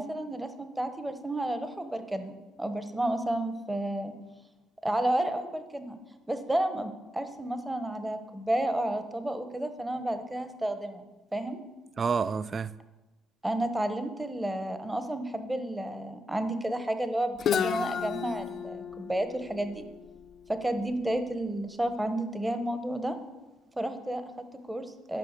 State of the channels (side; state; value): both; normal; correlation 0.88